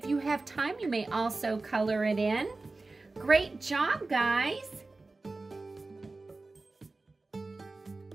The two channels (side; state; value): left; quieter; 3.4 dB